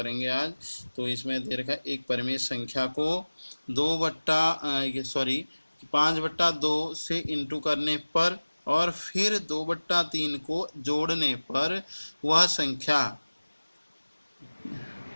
आज। तो इसमें दे रखा है एक परिमेय संख्या को 5/2 से इंटू करने पर और फिर 2/3 को जोड़ने पर वह संख्या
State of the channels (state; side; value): inverted; both; correlation -1.00